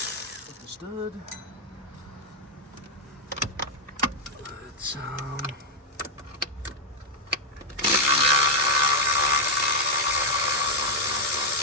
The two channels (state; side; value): normal; both; correlation 0.00